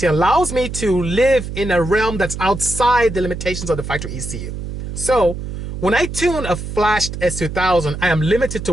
allows me to live in a realm that's outside the limitations of the factory ECU. So when I tune a flashed S2000, I am limited to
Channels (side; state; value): right; noise; hum, 7 dB below the sound